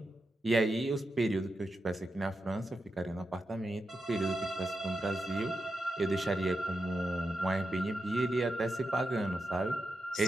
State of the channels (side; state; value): both; normal; correlation 0.88